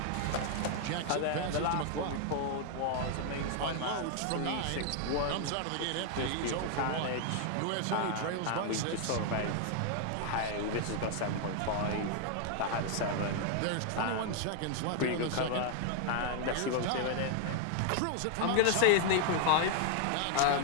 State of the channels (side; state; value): both; different; correlation 0.00